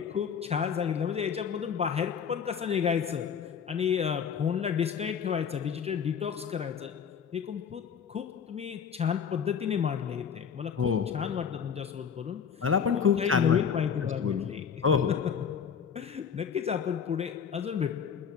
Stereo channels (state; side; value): quieter; right; 7.2 dB